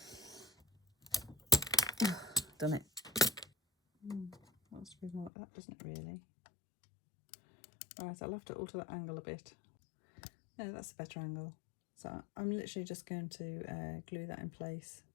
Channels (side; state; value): right; drops out; at 5.3 s